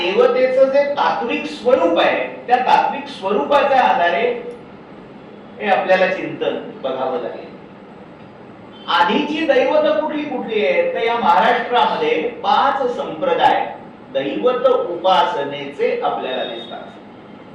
जे तात्विक स्वरूप आहे, त्या तात्विक स्वरूपाच्या आधारे हे आपल्याला चिंतन बघावं लागेल. आधीची दैवत कुठली कुठली आहेत तर या महाराष्ट्रामध्ये 5 संप्रदाय दैवत उपासनेचे आपल्याला दिसतात.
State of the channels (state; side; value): identical; both; correlation 1.00